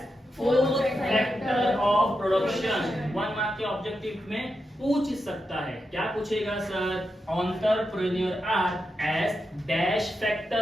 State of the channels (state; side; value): normal; both; correlation 0.87